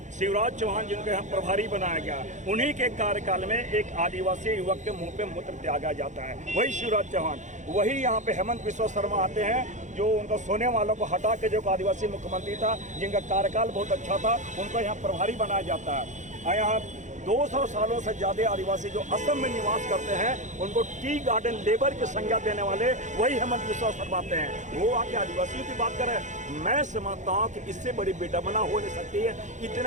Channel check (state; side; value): late; left; 0.35 ms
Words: शिवराज चौहान जिनको यहाँ प्रभारी बनाया गया, उन्हीं के कार्यकाल में एक आदिवासी युवक के मुंह पे मूत्र त्यागा जाता है, वही शिवराज चौहान। वही यहाँ पे हेमंत बिस्वा शर्मा आते हैं, जो उनको सोने वालों को हटा के जो आदिवासी मुख्यमंत्री था, जिनका कार्यकाल बहुत अच्छा था, उनको यहाँ प्रभारी बनाया जाता है। यहाँ 200 सालों से ज्यादा आदिवासी जो असम में निवास करते हैं, उनको टी गार्डन लेबर की संज्ञा देने वाले वही हेमंत बिस्वा शर्मा आते हैं। वो आके आदिवासियों की बात करें, मैं समझता हूँ कि इससे बड़ी बेदमना हो नहीं सकती है।